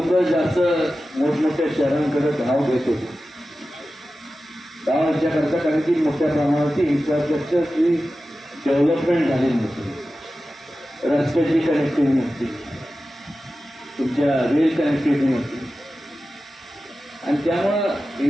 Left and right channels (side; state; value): both; normal; correlation 0.94